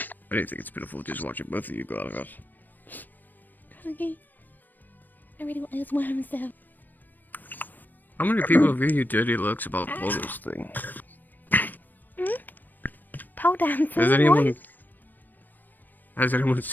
didn't think it's pitiful just watching both of you go out of us. Okay. I really want those worms though. How many people have given you dirty looks about the photos thing? Pole dancing. Has anyone Has anyone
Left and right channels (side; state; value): right; late; 0.089 ms